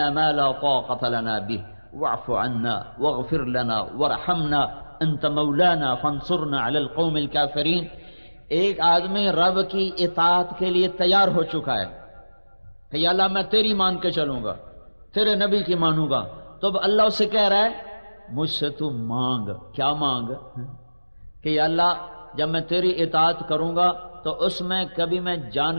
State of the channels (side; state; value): both; inverted; correlation -1.00